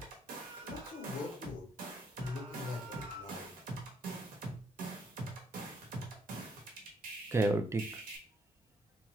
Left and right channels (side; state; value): both; normal; correlation 0.71